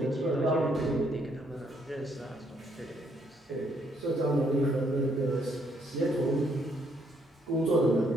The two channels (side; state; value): both; normal; correlation 0.70